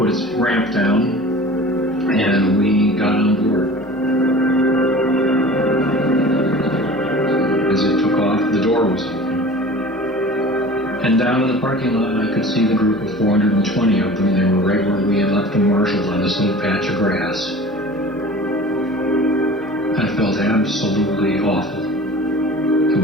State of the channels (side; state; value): left; noise; hum, 27 dB below the sound